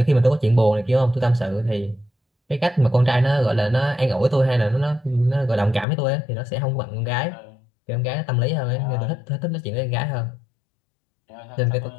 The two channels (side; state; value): right; drops out; at 5.9 s